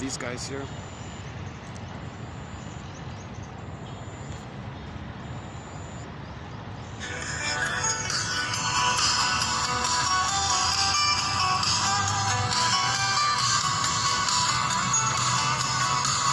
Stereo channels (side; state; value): both; identical; correlation 1.00